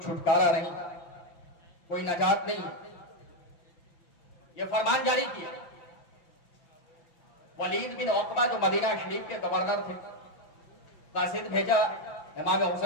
چھٹکارا نہیں، کوئی نجات نہیں. یہ فرمان جاری کیا. ولید بن عقبہ جو مدینہ شریف کے گورنر تھے، قاصد بھیجا امام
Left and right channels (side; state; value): right; late; 5.8 ms